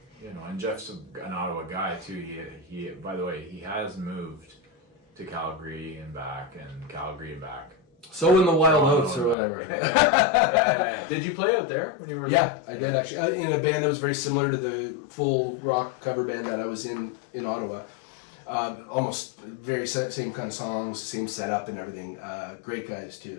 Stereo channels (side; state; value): right; drops out; at 9.3 s